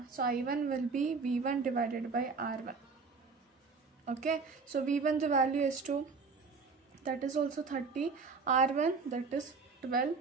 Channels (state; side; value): quieter; left; 4.7 dB